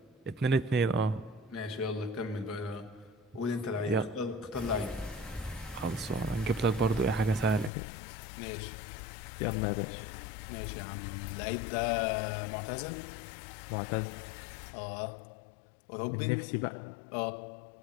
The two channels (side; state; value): right; drops out; at 7.7 s